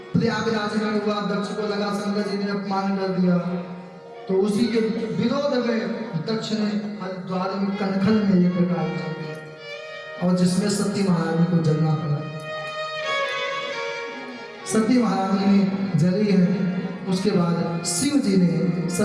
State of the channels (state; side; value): identical; both; correlation 1.00